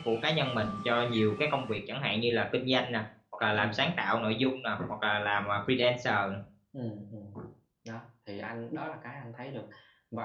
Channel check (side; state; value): both; identical; correlation 1.00